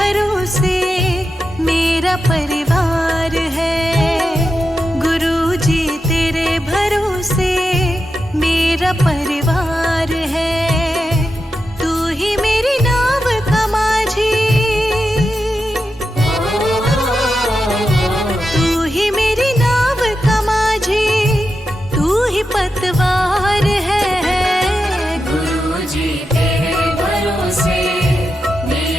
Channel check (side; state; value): both; normal; correlation 0.89